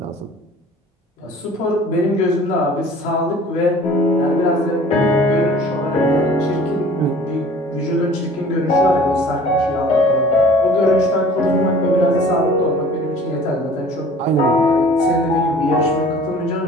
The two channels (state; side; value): normal; both; correlation 0.48